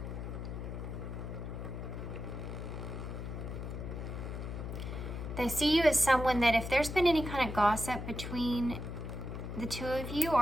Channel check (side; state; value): left; noise; hum, 6 dB below the sound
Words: They see you as someone that if there's been any kind of gossip between the two of you,